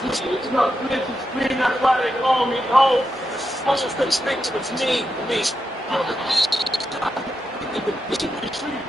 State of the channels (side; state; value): both; normal; correlation 0.86